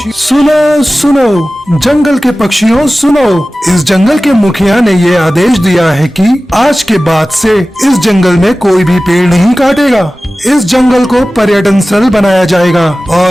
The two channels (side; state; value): both; normal; correlation 0.96